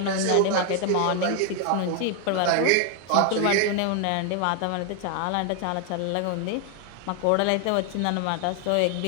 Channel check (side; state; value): both; different; correlation 0.00